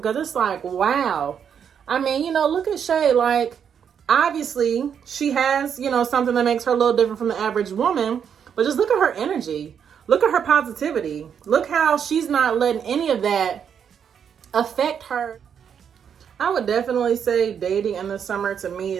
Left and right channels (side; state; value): left; quieter; 7.8 dB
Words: it's like, wow. I mean, you know, look at Shay. Like, obviously, she has, you know, something that makes her a little different from the average woman. But just look at her energy. Look at her positivity. Look how she's not letting any of that affect her. I would definitely say dating in the summer to me